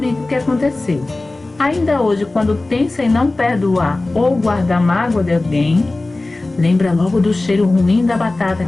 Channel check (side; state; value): right; quieter; 3.0 dB